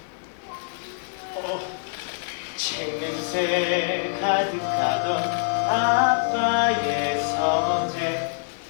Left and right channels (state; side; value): silent; right; digital silence